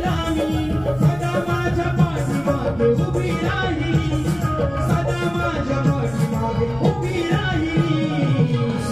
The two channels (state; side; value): noise; left; rumble, 19 dB below the sound